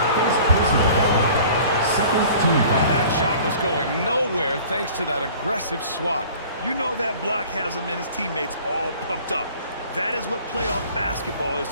First personal foul. Second team foul. That shot was going nowhere thanks to that aggressive swat. You know that block has him and his teammates all pumped up. That is what playoff basketball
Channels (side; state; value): both; inverted; correlation -0.47